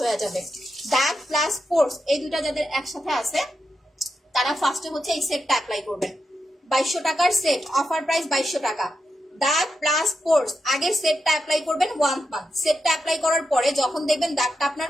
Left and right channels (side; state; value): both; normal; correlation 0.86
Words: হয়ে যাবে। দাগ প্লাস পোর্স এই দুটা যাদের একসাথে আছে তারা ফার্স্টে হচ্ছে এই সেটটা অ্যাপ্লাই করবেন। 2200 টাকার সেট, অফার প্রাইস 2200 টাকা। দাগ প্লাস পোর্স আগে সেটটা অ্যাপ্লাই করবেন 1 মান্থ। সেটটা অ্যাপ্লাই করার পরে যখন দেখবেন দাগটা আপনার